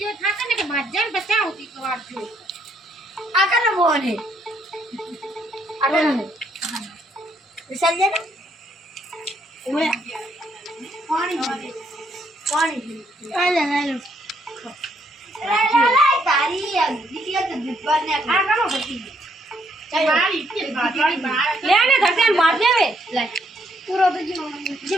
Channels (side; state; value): both; normal; correlation 0.71